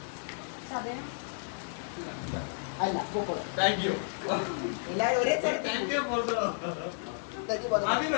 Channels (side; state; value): right; silent; digital silence